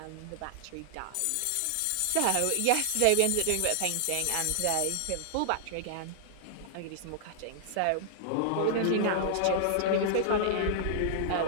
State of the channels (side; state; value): both; different; correlation -0.01